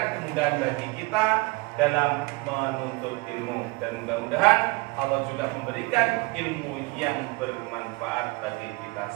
kemudahan bagi kita dalam menuntut ilmu, dan mudah-mudahan Allah juga memberikan ilmu yang bermanfaat bagi kita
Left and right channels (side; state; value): left; quieter; 25.1 dB